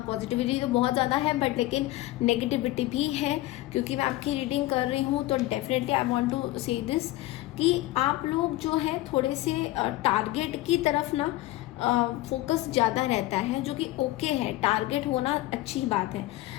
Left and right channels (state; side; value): quieter; right; 17.4 dB